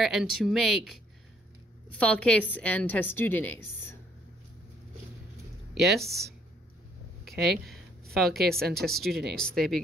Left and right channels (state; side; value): normal; both; correlation 0.65